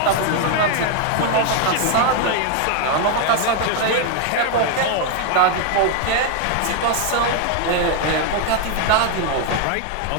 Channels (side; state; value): both; different; correlation 0.01